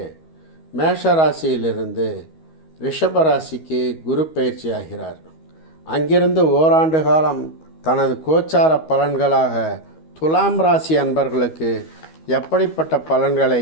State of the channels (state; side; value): late; right; 13 ms